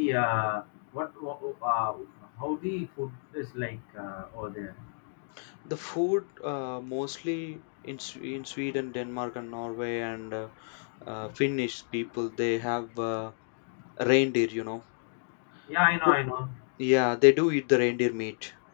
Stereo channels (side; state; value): right; silent; digital silence